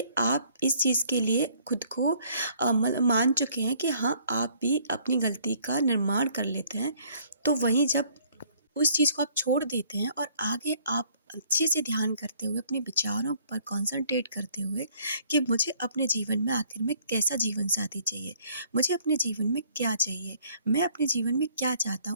आप इस चीज़ के लिए खुद को मतलब मान चुके हैं कि हाँ, आप भी अपनी गलती का निर्माण कर लेते हैं। तो वहीं जब उस चीज़ को आप छोड़ देते हैं और आगे आप अच्छे से ध्यान करते हुए अपने विचारों पर कंसंट्रेट करते हुए कि मुझे अपने जीवन में आखिर में कैसा जीवन साथी चाहिए, मुझे अपने जीवन में क्या चाहिए, मैं अपने जीवन में क्या चाहता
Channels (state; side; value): inverted; both; correlation -0.61